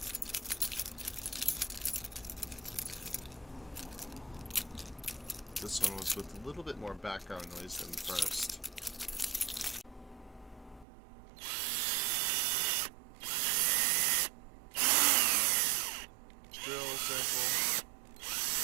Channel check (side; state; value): left; drops out; at 10.9 s